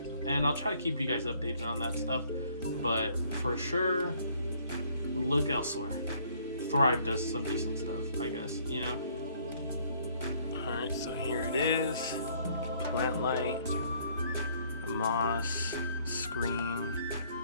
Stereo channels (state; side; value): inverted; both; correlation -0.62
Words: and I'll try to keep you guys updated on that stuff. But for sure, look elsewhere. Thrive does some decent stuff, I guess, you know. Alright, so here it is. Plant light, moss, screen.